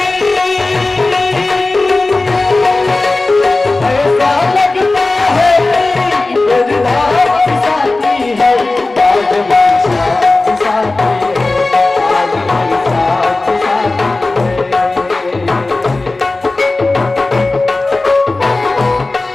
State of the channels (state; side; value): quieter; right; 3.2 dB